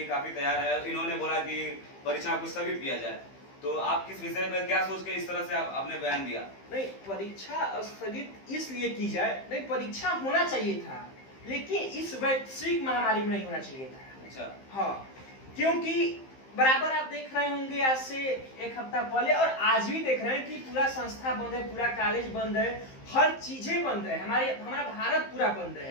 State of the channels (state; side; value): late; right; 15 ms